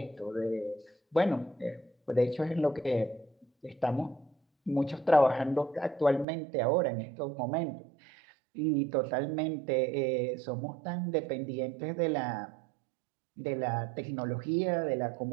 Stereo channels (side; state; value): left; drops out; at 6.2 s